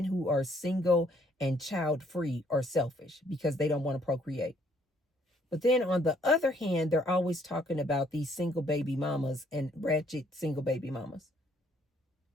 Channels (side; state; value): both; normal; correlation 0.66